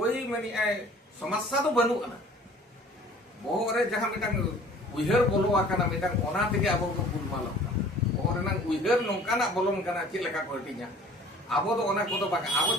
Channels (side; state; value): both; normal; correlation 0.49